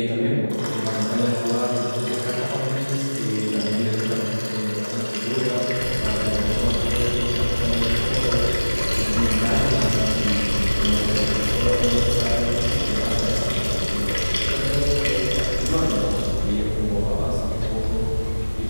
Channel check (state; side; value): inverted; both; correlation -1.00